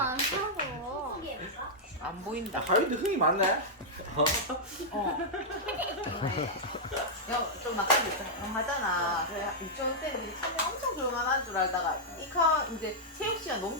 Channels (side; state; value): both; normal; correlation -0.07